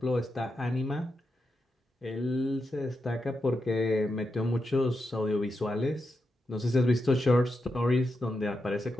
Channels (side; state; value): both; normal; correlation 0.87